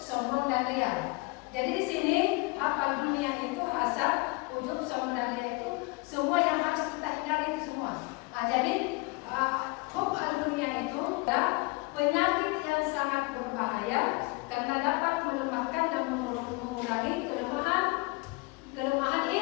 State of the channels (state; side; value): quieter; right; 27.1 dB